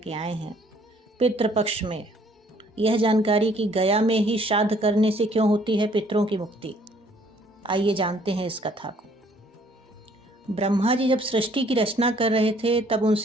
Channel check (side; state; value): both; normal; correlation 0.61